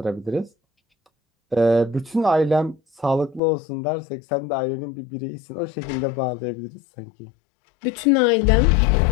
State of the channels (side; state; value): right; drops out; at 3.4 s